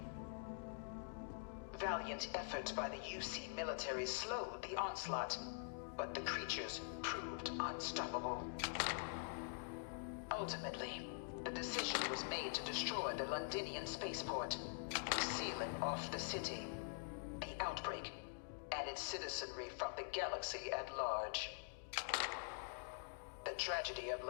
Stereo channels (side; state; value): right; silent; digital silence